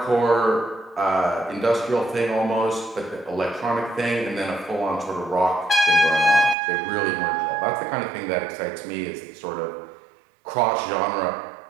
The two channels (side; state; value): left; drops out; at 6.6 s